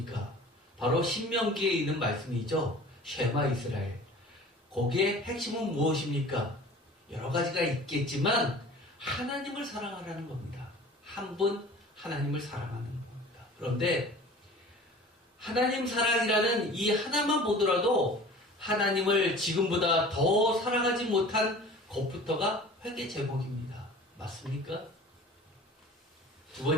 바로 신명기에 있는 말씀이죠. 쉐마 이스라엘. 거기에 핵심은 무엇입니까? 여러 가지가 있겠지만 하나님을 사랑하라는 겁니다. 한 분 하나님을 사랑하는 겁니다. 그런데 하나님 사랑이라는 이 하나만 보더라도 하나님을 지금보다 더 사랑하지 못한 것부터가 회개 제목입니다. 맞습니까? 두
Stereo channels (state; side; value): normal; both; correlation 0.43